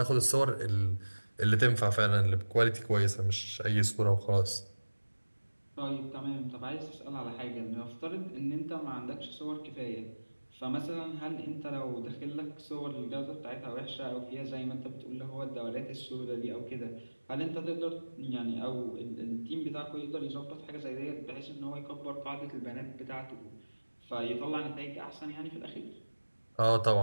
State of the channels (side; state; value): both; inverted; correlation -1.00